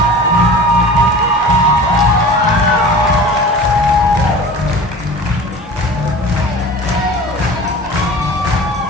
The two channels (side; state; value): both; normal; correlation 0.38